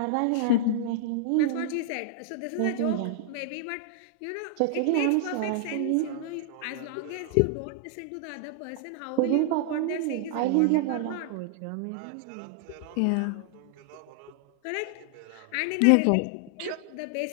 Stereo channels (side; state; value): both; different; correlation -0.01